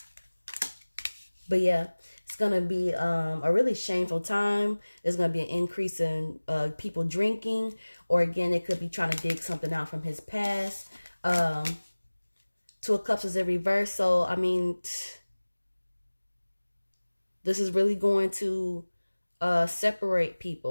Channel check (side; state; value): both; inverted; correlation -1.00